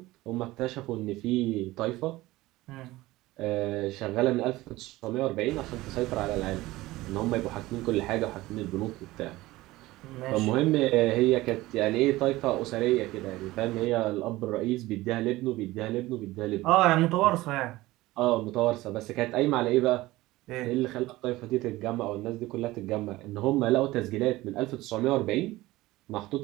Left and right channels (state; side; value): quieter; left; 18.4 dB